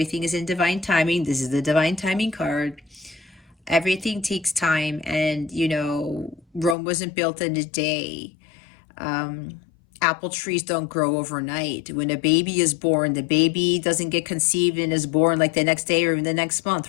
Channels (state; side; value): drops out; right; at 6.8 s